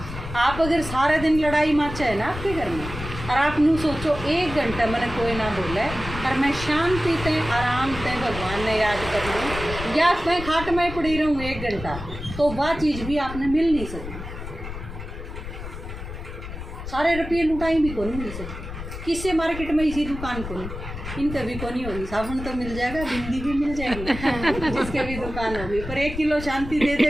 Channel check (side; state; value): left; noise; rumble, 9 dB below the sound